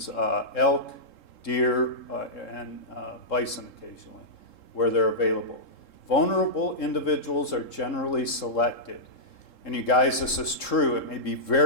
elk, deer, and bison occasionally, where they're available. Vulnerable individuals are generally selected. And you guys, this is true. It may be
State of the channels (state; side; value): late; right; 3.7 ms